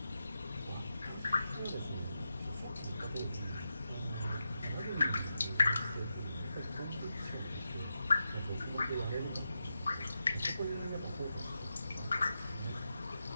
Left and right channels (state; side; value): inverted; both; correlation -0.89